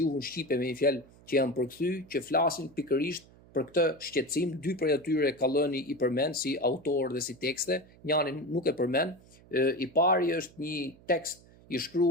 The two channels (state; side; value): noise; right; hum, 25 dB below the sound